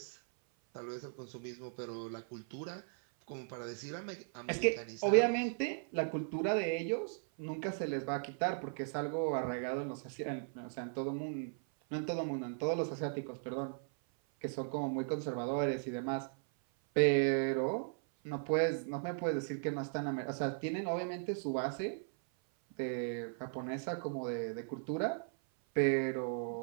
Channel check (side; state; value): left; silent; 53 dB below the other